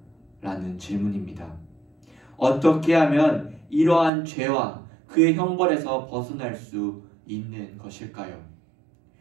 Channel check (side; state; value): left; drops out; at 4.1 s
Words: 라는 질문입니다. 어떻게 하면 이러한 죄와 그의 형벌에서 벗어날 수 있는 것일까요?